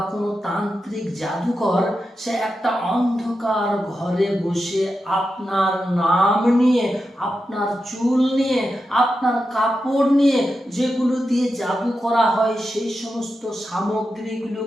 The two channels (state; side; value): normal; both; correlation 0.89